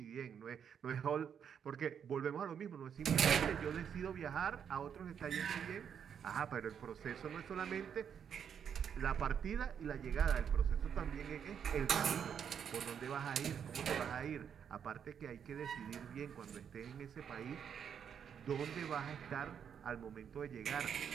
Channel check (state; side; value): quieter; left; 7.9 dB